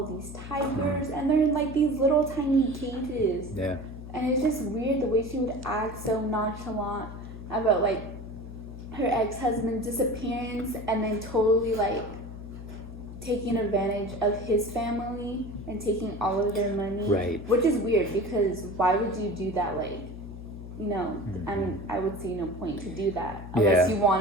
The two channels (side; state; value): left; noise; hum, 12 dB below the sound